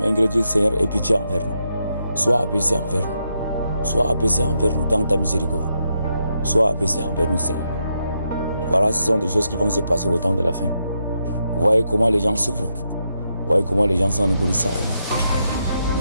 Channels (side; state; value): both; inverted; correlation -0.82